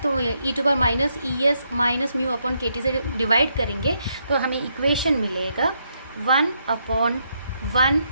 तो e to power minus es minus mu upon kt से डिवाइड करेंगे तो हमें इक्वेशन मिलेगा 1 अपॉन 1,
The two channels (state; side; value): inverted; both; correlation -0.78